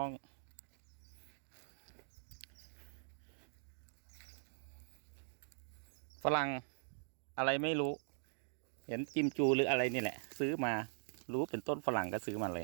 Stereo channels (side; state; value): left; silent; digital silence